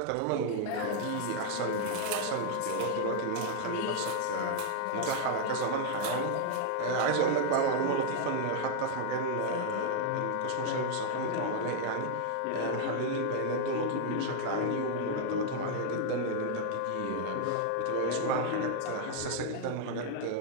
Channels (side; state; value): both; different; correlation 0.00